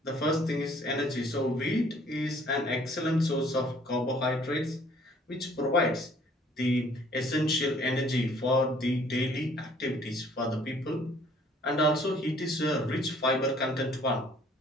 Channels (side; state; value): both; normal; correlation 0.58